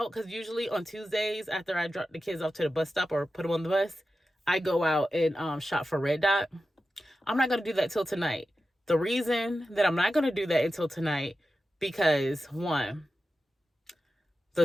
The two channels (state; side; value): normal; both; correlation 0.92